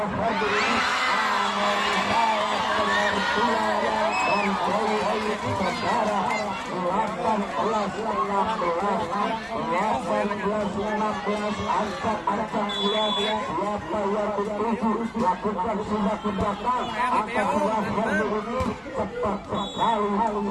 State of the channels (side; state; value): both; identical; correlation 1.00